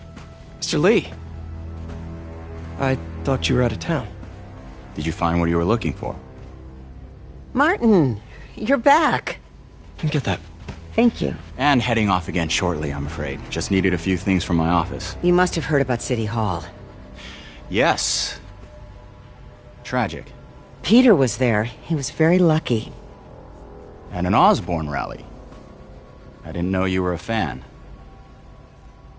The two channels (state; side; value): identical; both; correlation 1.00